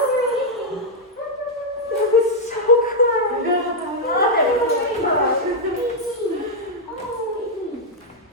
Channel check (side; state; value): both; normal; correlation -0.03